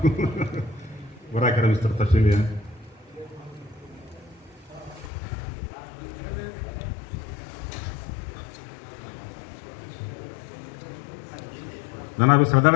برائے کرم اس طرف تشریف لے آئیں. جناب سردار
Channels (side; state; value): right; drops out; at 5.1 s